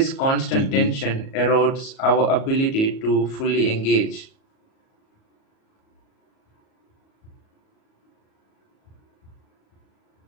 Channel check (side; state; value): right; late; 37 ms